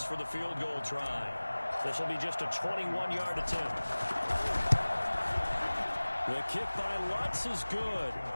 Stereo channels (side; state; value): both; inverted; correlation -1.00